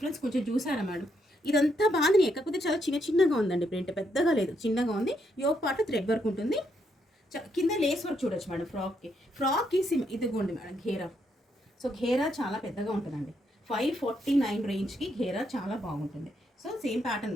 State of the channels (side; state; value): both; normal; correlation 0.77